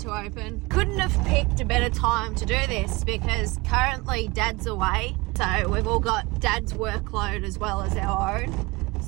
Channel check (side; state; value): left; quieter; 23.9 dB